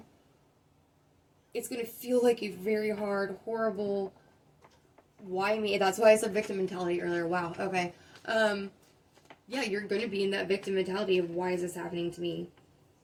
It's going to feel like a very hard, horrible, why me? That's why I said victim mentality earlier. Wow. Okay. Yeah, you're going to be in that victim mentality of why is this happening to me?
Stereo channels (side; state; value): both; identical; correlation 1.00